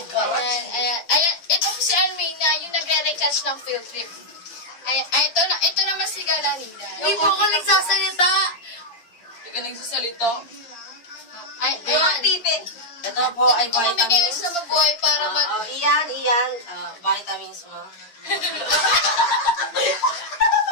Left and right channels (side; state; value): right; late; 8.7 ms